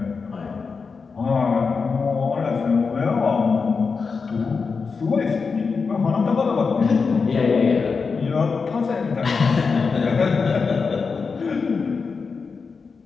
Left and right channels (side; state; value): right; quieter; 5.0 dB